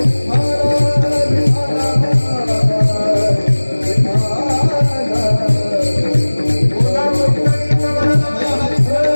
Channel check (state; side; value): inverted; both; correlation -1.00